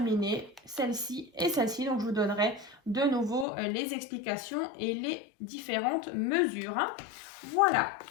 celle-ci et celle-ci. Donc je vous donnerai de nouveau les explications et les différentes mesures. Hein. Voilà,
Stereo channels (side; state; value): right; drops out; at 3.5 s